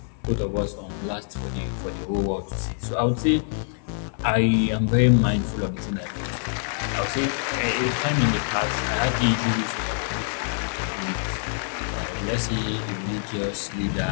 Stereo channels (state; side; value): silent; right; digital silence